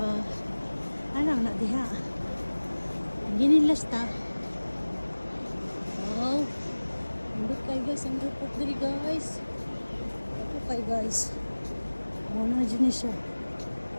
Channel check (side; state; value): both; inverted; correlation -1.00